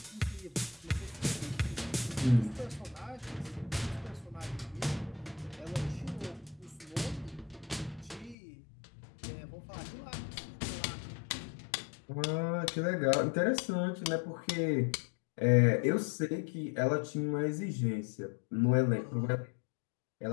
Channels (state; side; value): drops out; right; at 8.3 s